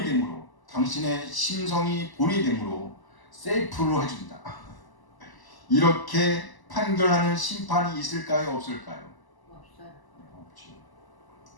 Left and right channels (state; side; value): late; right; 1.0 ms